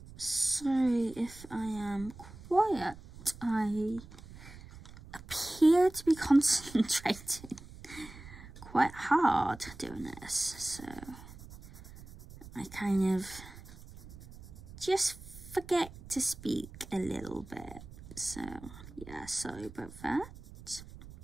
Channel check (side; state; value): right; noise; rumble, 17 dB below the sound